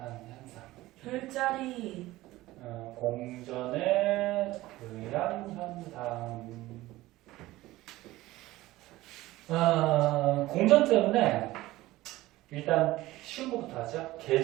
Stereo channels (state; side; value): quieter; left; 17.6 dB